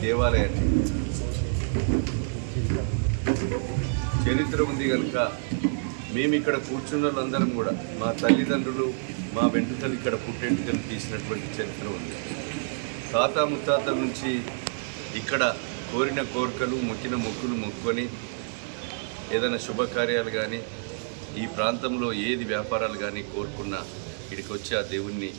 దేవాలయాన్ని చరిత్ర ఉంది కనుక మేము ఇక్కడ కూర్చున్న వాళ్ళందరం కూడా మా తల్లిదండ్రులు మా వెంట్రుకలు ఇక్కడ పుట్టెంటుకలు తీసినటువంటి చరిత్ర ఉంది. తాత ముత్తాతల నుంచి ఇక్కడ కోరిన కోరికలు మొక్కిన మొక్కులు మొక్కుకొని ఏదైనా శుభకార్యాలు కానీ ఈ ప్రాంతంలో ఏది వ్యాపారాలు కానీ కోరుకున్నా ఇక్కడికి వచ్చి ఆ దేవుణ్ణి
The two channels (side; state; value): left; silent; digital silence